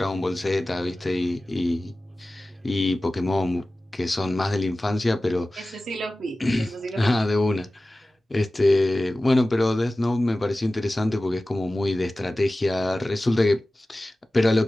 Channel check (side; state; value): both; normal; correlation 0.96